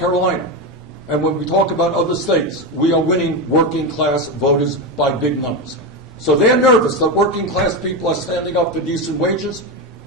and when we talk about other states, we are winning working class voters by big numbers. So they're nervous that working class people are standing up for decent wages.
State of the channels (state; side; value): normal; both; correlation 0.14